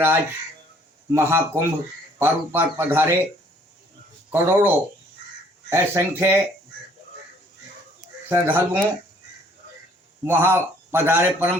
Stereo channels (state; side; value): normal; both; correlation 0.60